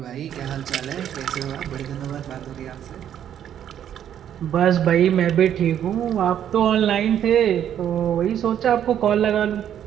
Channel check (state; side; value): quieter; left; 10.0 dB